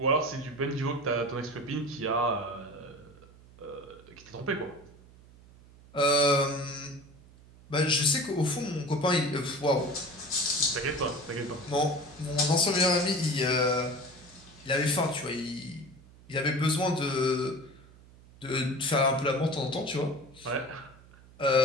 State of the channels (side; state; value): right; noise; hum, 23 dB below the sound